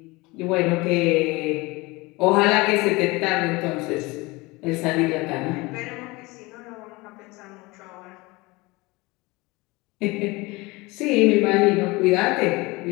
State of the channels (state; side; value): quieter; right; 23.2 dB